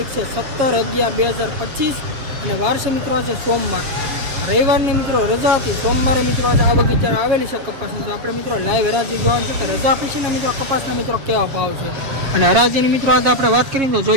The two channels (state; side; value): late; left; 7.5 ms